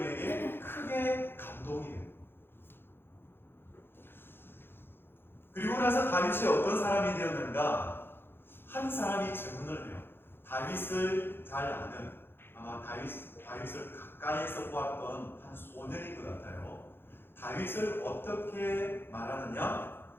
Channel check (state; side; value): late; right; 0.10 ms